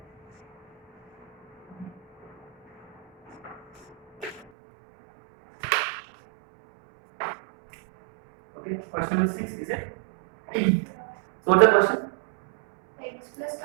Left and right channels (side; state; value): left; drops out; at 4.5 s